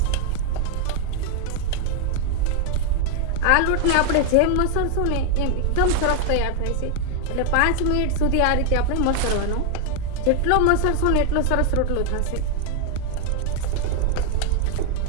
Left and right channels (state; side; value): different; both; correlation 0.00